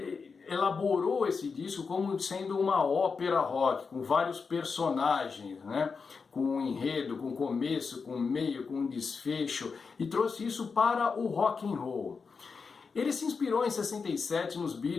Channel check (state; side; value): quieter; right; 5.1 dB